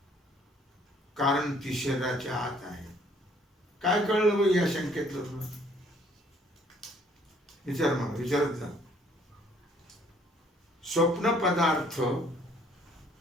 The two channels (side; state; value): both; normal; correlation 0.61